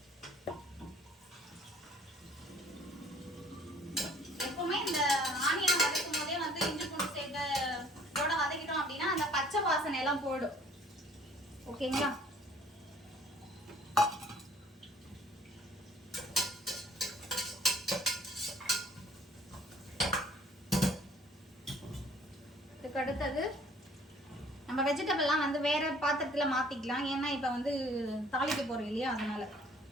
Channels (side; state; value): both; normal; correlation 0.56